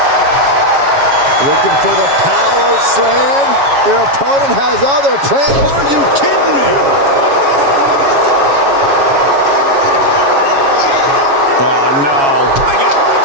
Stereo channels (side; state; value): left; late; 7.2 ms